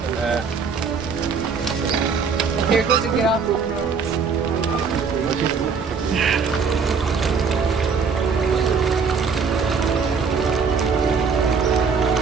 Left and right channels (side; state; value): left; quieter; 5.5 dB